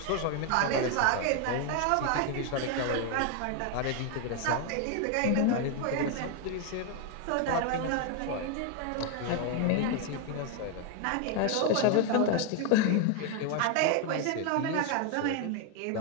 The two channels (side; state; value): both; different; correlation 0.01